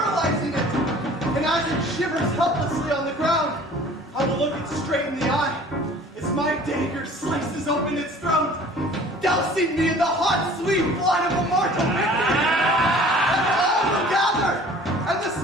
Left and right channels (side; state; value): both; normal; correlation 0.48